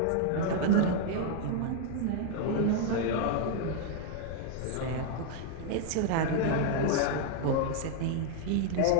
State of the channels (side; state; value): both; different; correlation 0.00